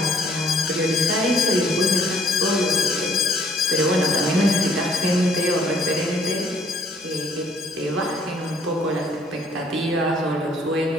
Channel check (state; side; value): normal; both; correlation 0.62